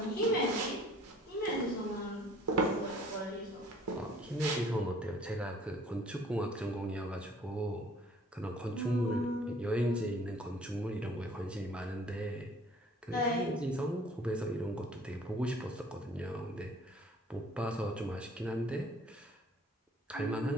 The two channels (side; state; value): both; normal; correlation 0.54